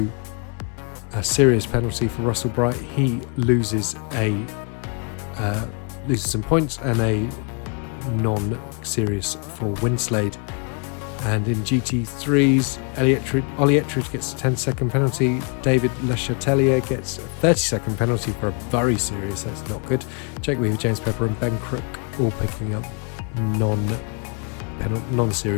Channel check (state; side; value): quieter; right; 38.0 dB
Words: a serious penalty for Russell Bright. He loses some points, and a non-serious for Winslade. And in GT3s, Ollie Ettridge gets a 10-second penalty. David Le Chatelier gets a 30-second penalty for a very serious, that's not good. Jake Weaver, James Pepper and Ben Crook all picking up